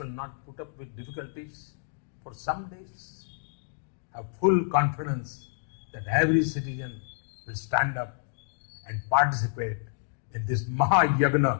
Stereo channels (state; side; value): silent; right; digital silence